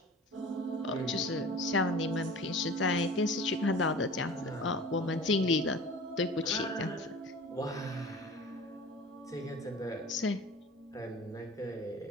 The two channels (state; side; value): normal; both; correlation 0.40